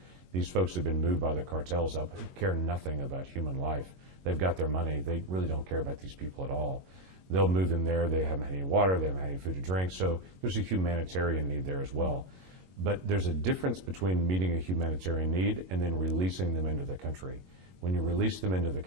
These folks have been moved by the cartels up, care nothing about human life. They've got their money. They really don't care about these people at all. They'll move them there. They haven't had any water. They haven't had any food to drink. So there's a humanitarian need there as well. But there's a difference between meeting a humanitarian need and then releasing them into the country. When you release them into the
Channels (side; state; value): left; late; 22 ms